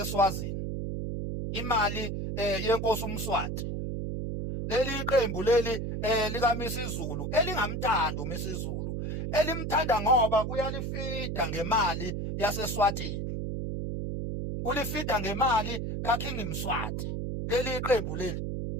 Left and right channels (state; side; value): noise; right; hum, 3 dB below the sound